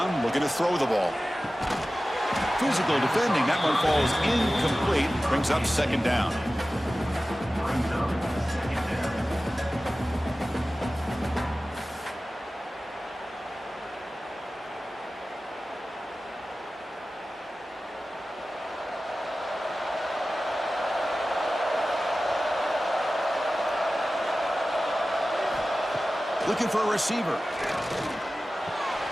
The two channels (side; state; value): both; normal; correlation 0.96